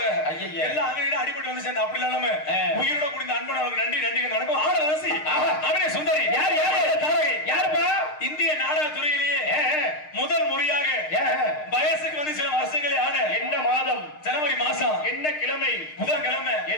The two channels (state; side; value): late; right; 6.6 ms